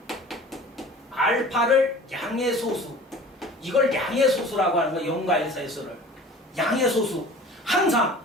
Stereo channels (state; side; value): normal; both; correlation 0.43